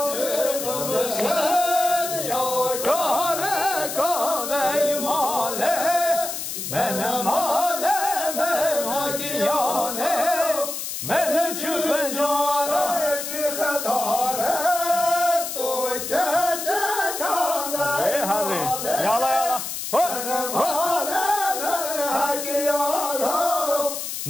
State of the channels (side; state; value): left; noise; hiss, 5 dB below the sound